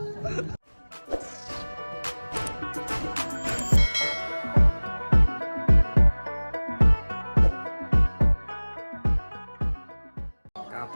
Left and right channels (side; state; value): both; inverted; correlation -1.00